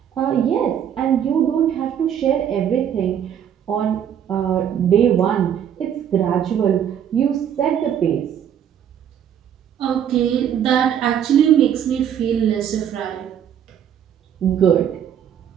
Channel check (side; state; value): left; quieter; 9.2 dB